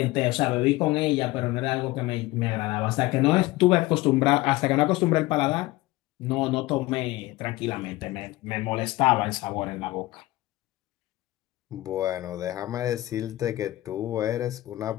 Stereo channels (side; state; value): right; quieter; 18.7 dB